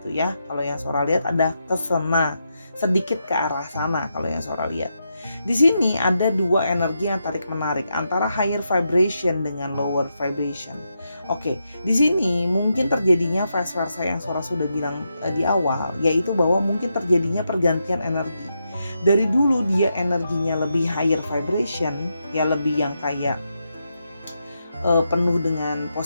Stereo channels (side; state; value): both; inverted; correlation -0.84